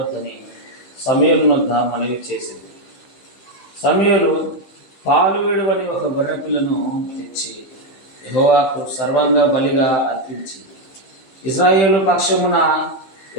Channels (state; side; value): late; right; 15 ms